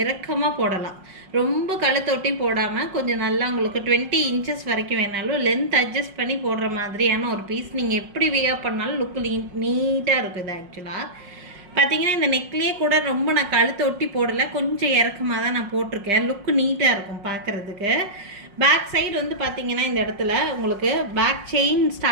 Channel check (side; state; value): left; late; 5.5 ms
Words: இறக்கமாக போடலாம், ரொம்ப கழுத்தொட்டி போடாமல் கொஞ்சம் நல்லா உங்களுக்கு 20 இன்ச்சஸ் வரைக்கும் வேணாலும் லென்த் அட்ஜஸ்ட் பண்ணி போடுற மாதிரியான ஒரு பீஸ். நீங்கள் எப்படி வியர் பண்ணாலும் லுக்கு நீட்டாக இருக்கும். இது ஆக்சுவலாக பார்த்தீங்கன்னா இந்த நெக்லேயே கூட ரொம்ப நான் கழுத்தை ஒட்டி போடலை, கொஞ்சம் இறக்கமாக தான் நான் போட்டிருக்கேன். லுக்கு நீட்டாக இருக்கும் பார்க்குறதுக்கு. பேக் சைடு வந்து பார்த்தீங்கன்னா இந்த இடத்துல உங்களுக்கு பேக் செயின்